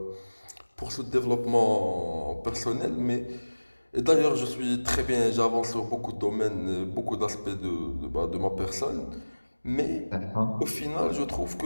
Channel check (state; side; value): inverted; both; correlation -1.00